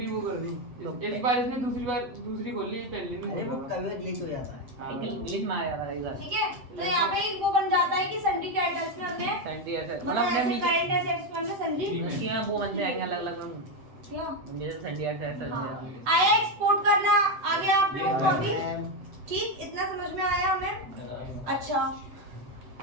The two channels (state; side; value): late; left; 7.8 ms